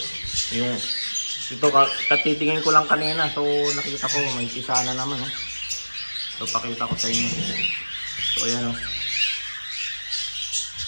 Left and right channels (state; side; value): inverted; both; correlation -1.00